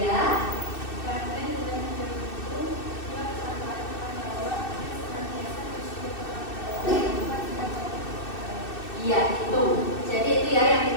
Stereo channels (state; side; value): late; right; 2.6 ms